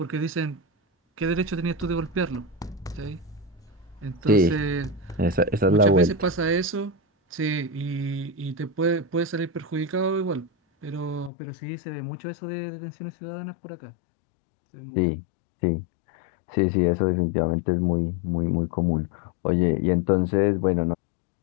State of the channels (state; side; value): drops out; right; at 11.3 s